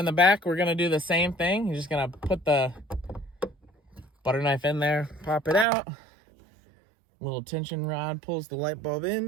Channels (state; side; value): drops out; left; at 5.7 s